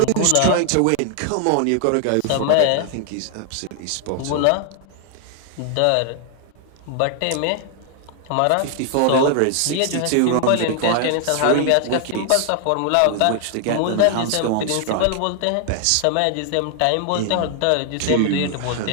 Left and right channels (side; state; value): both; different; correlation 0.00